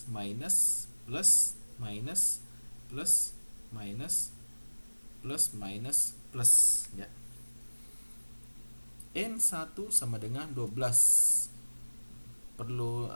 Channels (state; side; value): inverted; both; correlation -1.00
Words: minus, plus, minus, plus, minus, plus, minus, plus, ya. N1 sama dengan 12. Perlu